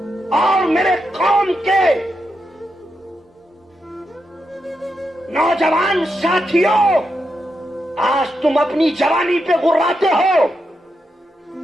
और मेरे कौम के नौजवान साथियों, आज तुम अपनी जवानी पे गुर्राते हो,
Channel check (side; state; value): both; normal; correlation 0.85